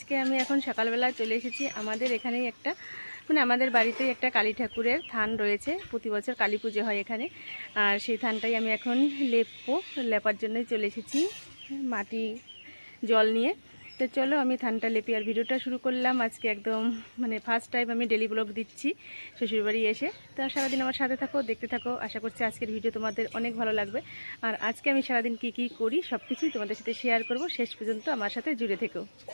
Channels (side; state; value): both; inverted; correlation -1.00